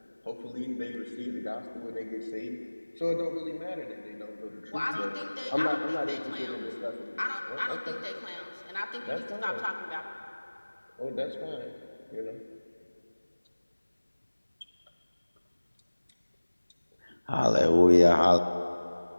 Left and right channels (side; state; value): both; inverted; correlation -1.00